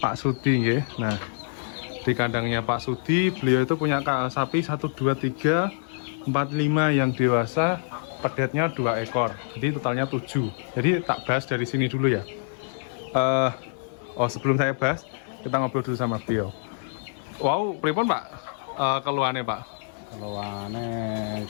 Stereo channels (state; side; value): silent; right; 61 dB below the other